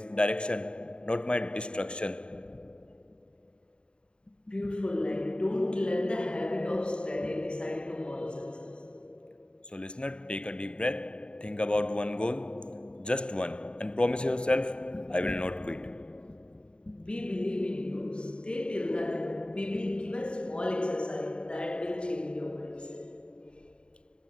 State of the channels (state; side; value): late; right; 0.052 ms